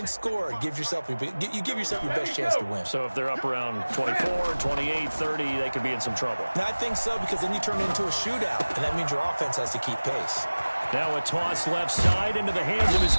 scored, you give yourself your best chance to win. So if they're up around 24, 28, 30, they could be in some trouble. And I think so, because then you turn it into a shootout, and that means your offense has to keep pace. Now a toss left side into the hands of his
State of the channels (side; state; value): both; inverted; correlation -1.00